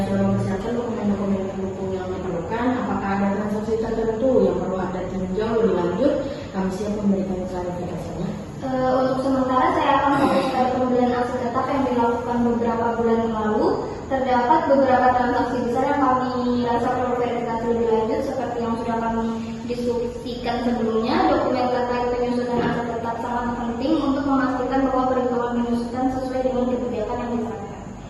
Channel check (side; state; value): both; identical; correlation 1.00